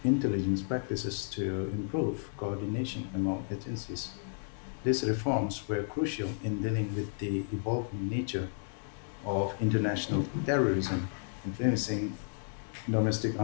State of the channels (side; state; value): right; silent; digital silence